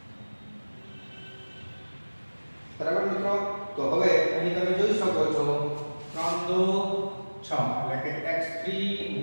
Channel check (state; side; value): inverted; both; correlation -1.00